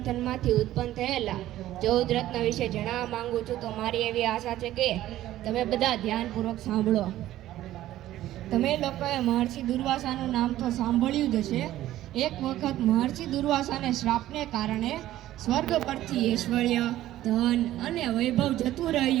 ઉત્પન્ન થયેલા 14 રત્ન વિશે જણાવવા માંગુ છું. તો મારી એવી આશા છે કે તમે બધા ધ્યાનપૂર્વક સાંભળો. તમે લોકોએ મહર્ષિ દુર્વાસાનું નામ તો સાંભળ્યું જ હશે. એક વખત મહર્ષિ દુર્વાસાને શ્રાપને કારણે સ્વર્ગ પરથી ઐશ્વર્ય, ધન અને વૈભવ જતું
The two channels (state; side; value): quieter; left; 14.1 dB